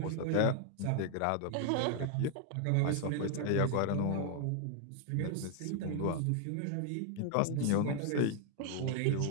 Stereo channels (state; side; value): different; both; correlation 0.00